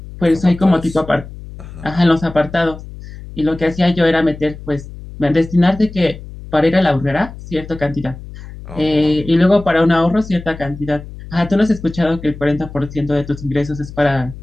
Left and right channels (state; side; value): noise; left; hum, 14 dB below the sound